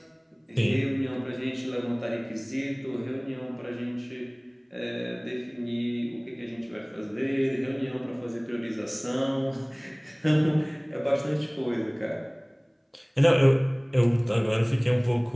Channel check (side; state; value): both; identical; correlation 1.00